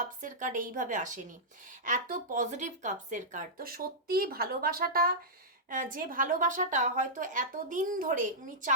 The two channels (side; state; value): both; normal; correlation -0.11